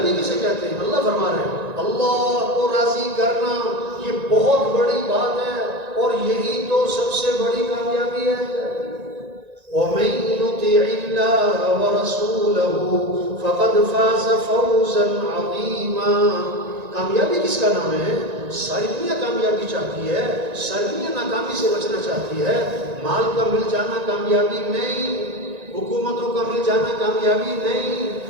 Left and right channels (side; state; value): left; late; 1.9 ms